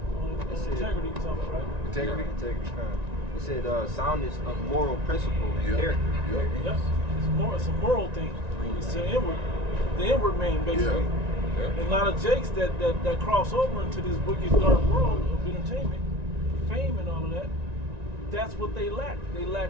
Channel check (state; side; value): late; left; 1.9 ms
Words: It said, integrity or something, right? Integrity. It said soundness of moral principle and character. Yep. It's a moral thing. It's the inward man, basically. Yeah. And a lot of jakes that cross over into this wicked, dark world of entertainment, fame and all of that, that's what they lack. They lack